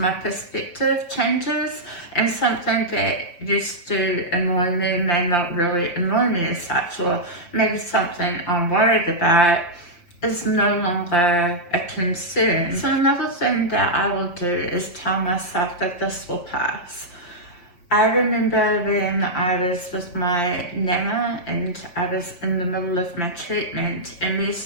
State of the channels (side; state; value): right; late; 5.8 ms